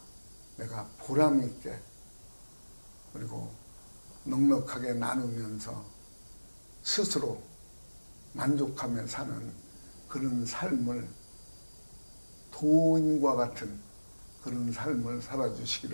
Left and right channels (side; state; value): both; inverted; correlation -1.00